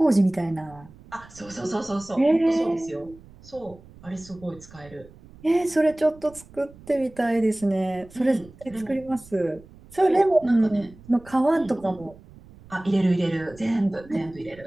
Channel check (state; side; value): noise; right; rumble, 22 dB below the sound